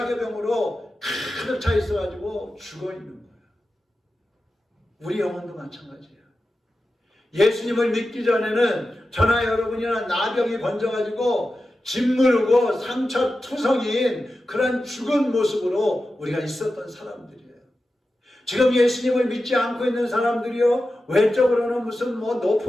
병으로 가득 차 있어가지고 죽어 있는 거예요. 우리 영혼도 마찬가지예요. 예수님을 믿기 전에는 저나 여러분이나 나병이 번져가지고 짓무르고 상처투성인 그런 죽은 모습으로 우리가 있었던 사람들이에요. 지금 예수님을 믿지 않고 있는 사람들이요, 외적으로는 무슨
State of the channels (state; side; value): normal; both; correlation 0.92